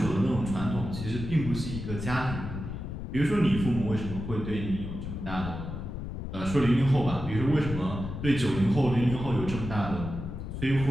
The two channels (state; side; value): noise; left; rumble, 7 dB below the sound